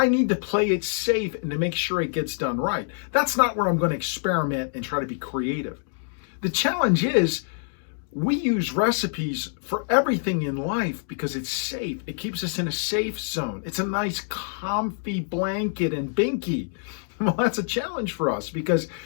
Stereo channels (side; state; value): right; silent; digital silence